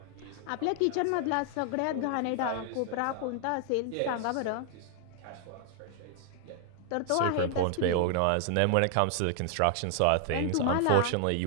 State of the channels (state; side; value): different; both; correlation 0.00